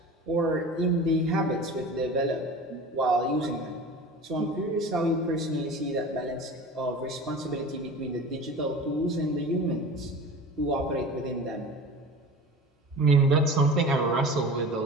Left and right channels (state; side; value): normal; both; correlation 0.36